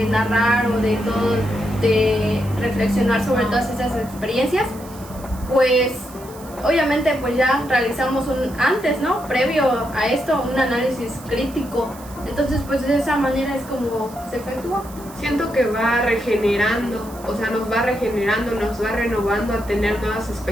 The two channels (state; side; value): noise; right; hiss, 20 dB below the sound